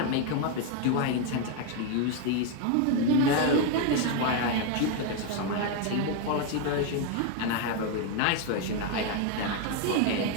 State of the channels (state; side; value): different; both; correlation 0.01